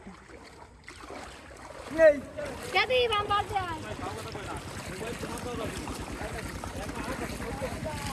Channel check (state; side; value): identical; both; correlation 1.00